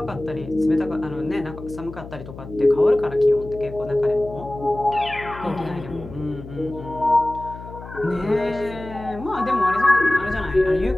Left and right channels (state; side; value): noise; left; hum, 14 dB below the sound